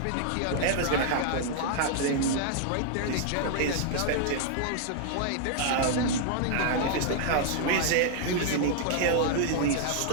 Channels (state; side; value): different; both; correlation 0.00